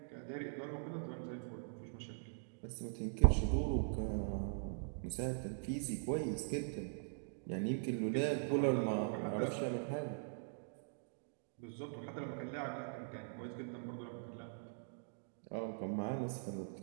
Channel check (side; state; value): left; silent; digital silence